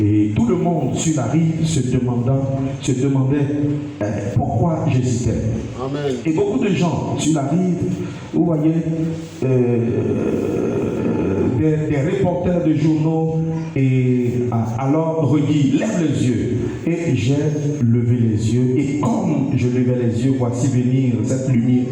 tout le monde sur la rive se demandait pourquoi j'hésitais. Amen. Et beaucoup de gens sur la rive, vous voyez, des reporters de journaux et alors redit lève les yeux et j'ai levé les yeux et comme je levais les yeux, voici venir cette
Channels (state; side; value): identical; both; correlation 1.00